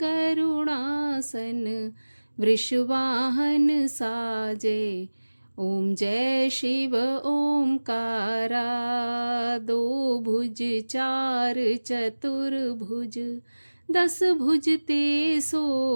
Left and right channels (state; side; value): inverted; both; correlation -1.00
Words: वृषवाहन साजे। ओम जय शिव ओमकारा, दो भुज चार चतुर्भुज, 10 भुज ते